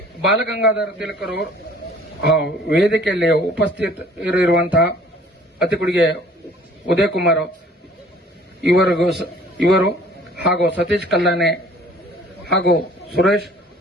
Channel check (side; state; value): both; normal; correlation 0.53